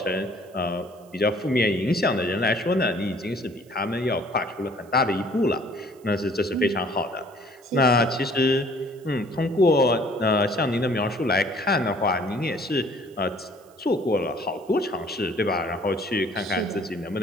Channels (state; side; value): noise; right; hiss, 29 dB below the sound